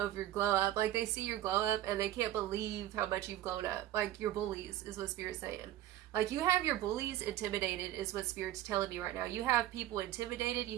your glow up. Like they see your glow up and they can't believe how much you've grown up. Like your bullies is what Spirit's saying. Like you have your bullies intimidated is what Spirit's telling me right now. You have people intimidated.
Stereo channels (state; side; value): quieter; left; 13.5 dB